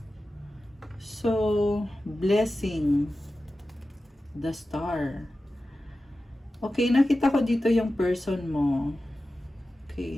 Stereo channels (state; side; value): normal; both; correlation 0.94